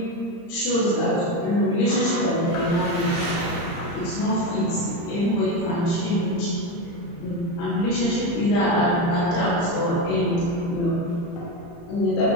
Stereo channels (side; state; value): right; late; 35 ms